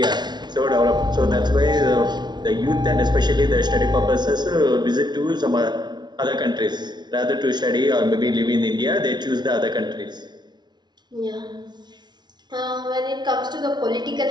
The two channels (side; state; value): left; late; 0.20 ms